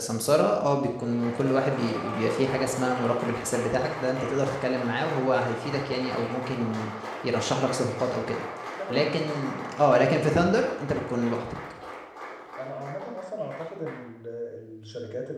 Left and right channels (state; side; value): identical; both; correlation 1.00